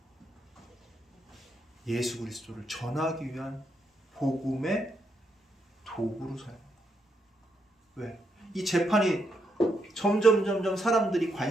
예수 그리스도를 전하기 위한 복음의 도구로 사용합니다. 왜? 이 재판이 점점 사람들이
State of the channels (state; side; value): normal; both; correlation 0.80